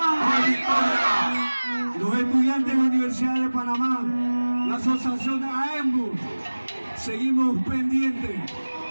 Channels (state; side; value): inverted; both; correlation -1.00